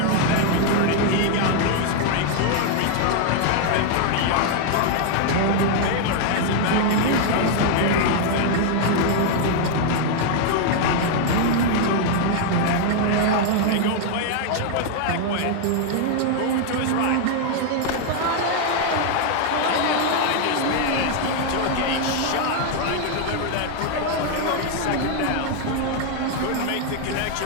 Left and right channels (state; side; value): different; both; correlation 0.00